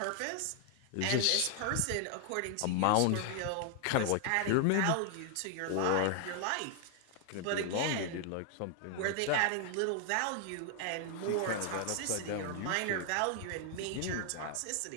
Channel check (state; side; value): different; both; correlation 0.00